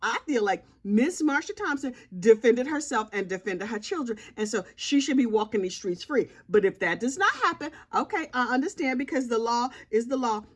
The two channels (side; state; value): both; identical; correlation 1.00